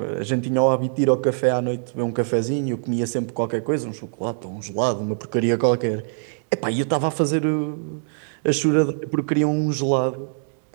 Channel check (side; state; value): left; silent; digital silence